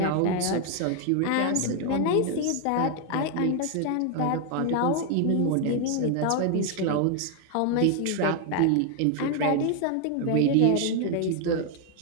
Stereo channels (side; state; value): both; different; correlation 0.00